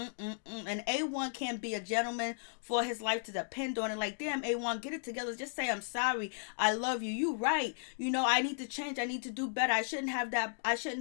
A1 can't be a gentleman for his life to depend on it. Like, damn, A1, get it together. Just say, I'm sorry. I love you. You right. I need to change. I need to do better. I shouldn't have that. I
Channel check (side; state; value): right; silent; digital silence